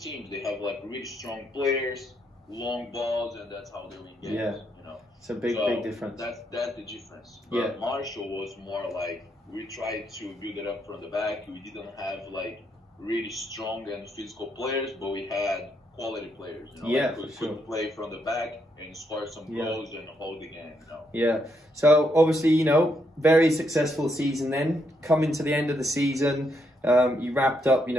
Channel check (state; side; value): normal; both; correlation 0.77